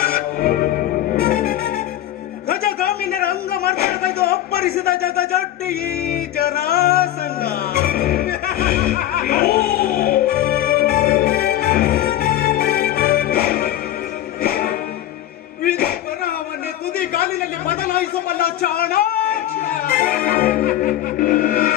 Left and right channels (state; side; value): quieter; right; 13.0 dB